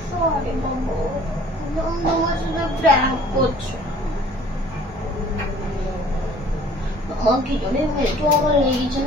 সরি বাবু, তোমার সাথে প্র্যাঙ্ক করছো। আমার কি জন্য মেট্রো আমার লেগেছে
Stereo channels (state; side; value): normal; both; correlation 0.53